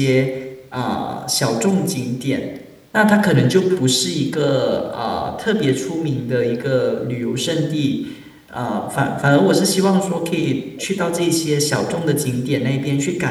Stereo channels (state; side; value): identical; both; correlation 1.00